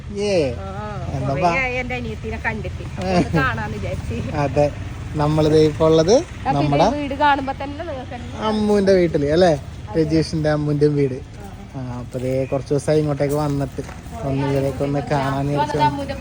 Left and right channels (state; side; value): identical; both; correlation 1.00